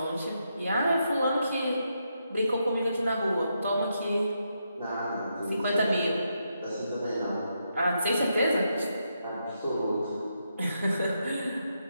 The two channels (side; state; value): both; inverted; correlation -0.82